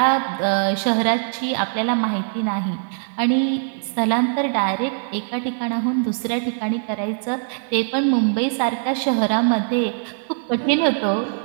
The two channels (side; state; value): left; silent; digital silence